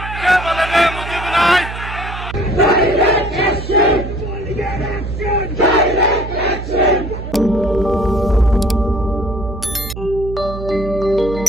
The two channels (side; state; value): right; noise; hum, 9 dB below the sound